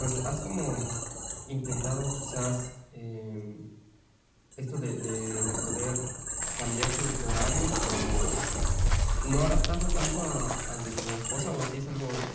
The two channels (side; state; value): both; identical; correlation 1.00